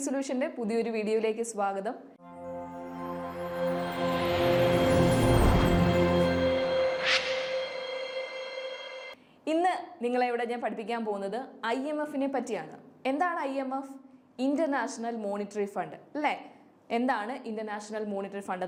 സൊല്യൂഷൻ്റെ പുതിയൊരു വീഡിയോയിലേക്ക് സ്വാഗതം. ഇന്ന് നിങ്ങളെ ഇവിടെ ഞാൻ പഠിപ്പിക്കാൻ പോകുന്നത് IMFനെ പറ്റിയാണ്. എന്താണ് IMF? ഇന്റർനാഷണൽ മോണിറ്ററി ഫണ്ട് അല്ലേ? എന്താണ് ഇന്റർനാഷണൽ മോണിറ്ററി ഫണ്ട്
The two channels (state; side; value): identical; both; correlation 1.00